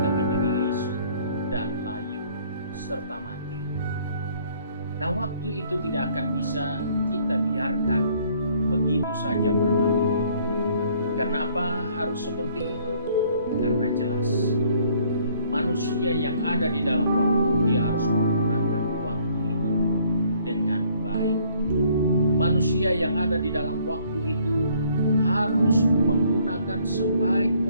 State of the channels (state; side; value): inverted; both; correlation -0.62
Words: menjadi lisut dan layu serta mati. Nah, waktu itu tidak akan bisa kita biarkan begitu saja berlalu. Karena apa harus seperti itu? Karena jelas manusia yang ada di dalam waktu, dia harus menggunakan waktu itu dengan baik. Manusia yang ada di dalam waktu itu harus menggunakan sebaik